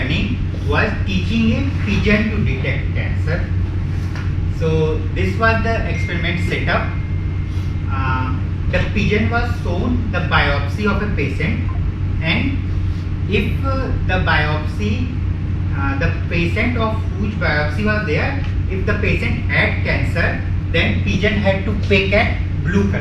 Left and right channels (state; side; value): identical; both; correlation 1.00